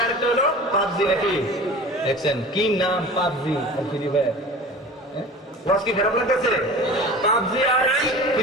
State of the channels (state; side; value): normal; both; correlation 0.38